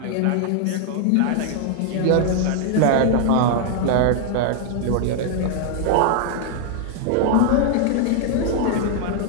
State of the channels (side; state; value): both; different; correlation 0.00